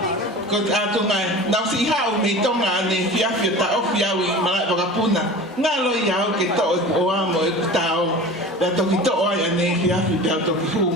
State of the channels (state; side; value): normal; both; correlation 0.36